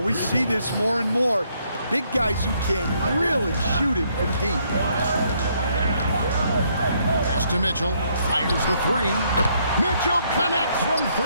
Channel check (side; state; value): both; inverted; correlation -0.71